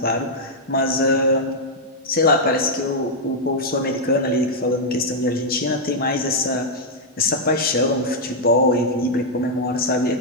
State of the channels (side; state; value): both; normal; correlation -0.04